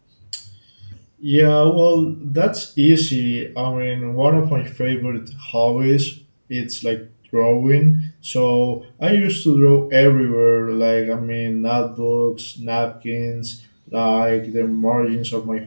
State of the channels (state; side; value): inverted; both; correlation -1.00